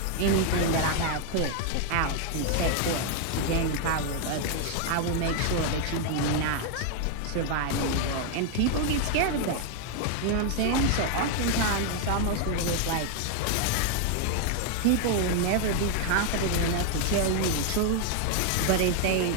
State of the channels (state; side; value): different; both; correlation 0.00